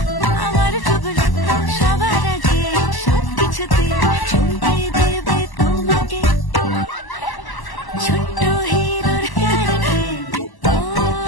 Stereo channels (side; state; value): right; late; 1.0 ms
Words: আমার টুবলু সবার আগে সব কিছুতে চমকে দেবে তোমাকে ছোট্ট হিরোর কারণে ও